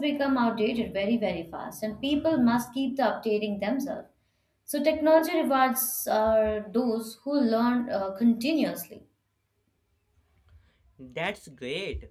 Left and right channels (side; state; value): both; identical; correlation 1.00